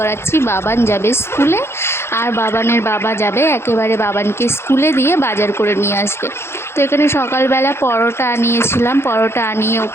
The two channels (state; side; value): late; right; 0.12 ms